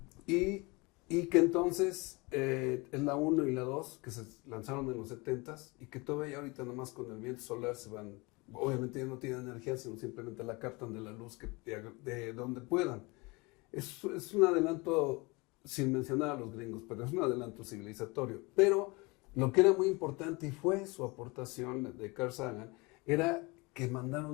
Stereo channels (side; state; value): right; quieter; 26.0 dB